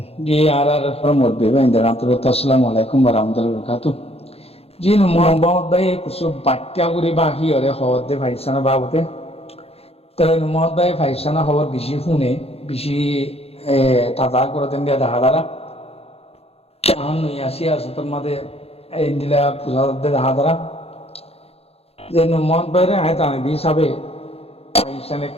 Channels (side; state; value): right; late; 0.29 ms